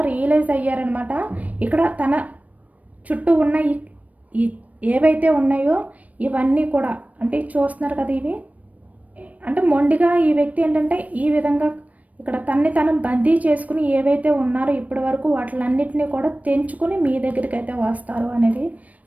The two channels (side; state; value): left; late; 0.070 ms